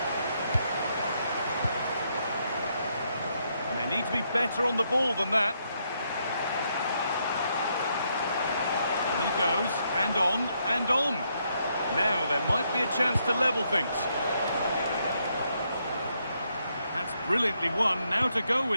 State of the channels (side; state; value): both; inverted; correlation -0.76